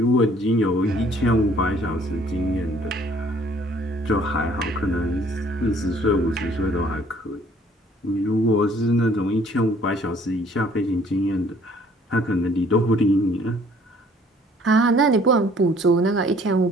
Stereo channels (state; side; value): normal; both; correlation 0.59